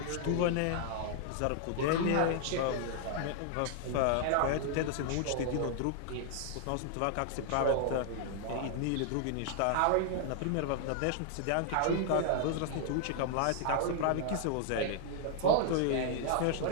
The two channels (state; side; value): different; both; correlation 0.00